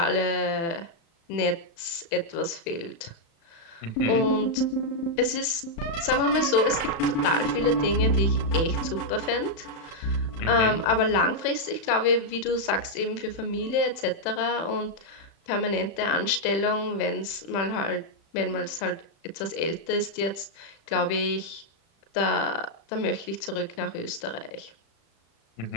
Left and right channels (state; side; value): late; right; 35 ms